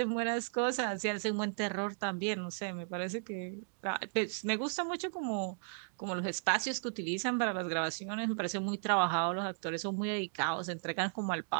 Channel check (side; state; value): left; silent; digital silence